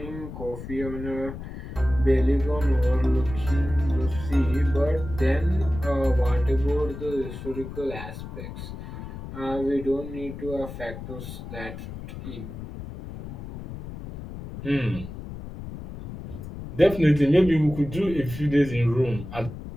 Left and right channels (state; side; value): noise; left; rumble, 10 dB below the sound